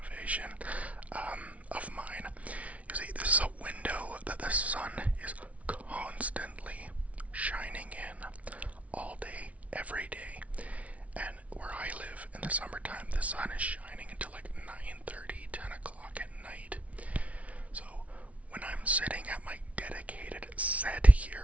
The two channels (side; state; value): left; late; 0.066 ms